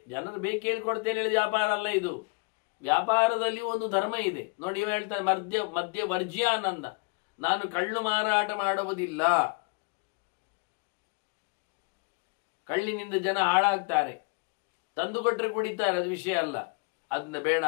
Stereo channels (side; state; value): right; quieter; 32.1 dB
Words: ಜನರು ಬೇಕು ಹೇಳ್ಕೊಡ್ತೇನೆ ಹೇಳಿದ ವ್ಯಾಪಾರ ಅಲ್ಲ ಇದು. ವ್ಯಾಪಾರದಲ್ಲಿ ಒಂದು ಧರ್ಮ ಇದೆ ನೋಡಿ. ಹೇಳ್ತಾರೆ ಮದ್ಯ ವರ್ಜ್ಯಾನಂದ, ನಾನು ಕಳ್ಳು ಮಾರಾಟ ಮಾಡುವುದಿಲ್ಲ. ಕಳ್ಳಿನಿಂದ ಜನ ಹಾಳಾಗ್ತಾರೆ, ತಂದು ಕೊಟ್ಟರೆ ಕುಡಿತಾರೆ, ಅದು ವಿಷಯ ಅಲ್ಲ, ಅದನ್ನ ಬೇಡ